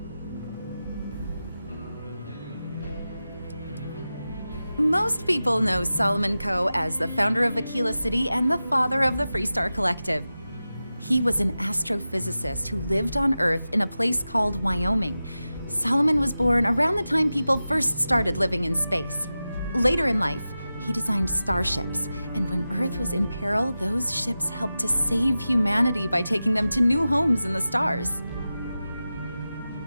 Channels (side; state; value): both; inverted; correlation -0.94